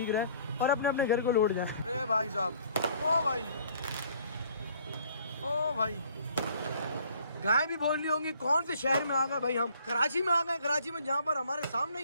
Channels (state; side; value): inverted; both; correlation -0.58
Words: रहे और अपने अपने घर को लौट जाए। अरे भाई साहब, ओ भाई, ओ भाई, गाय भी बोल रही होंगी कौन से शहर में आ गए भाई हम? कराची में आ गए। कराची में जहाँ पर हमारे सामने